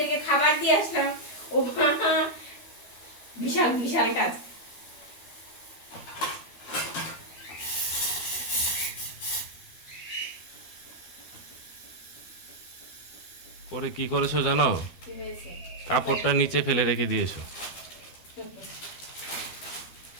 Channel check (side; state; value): right; late; 12 ms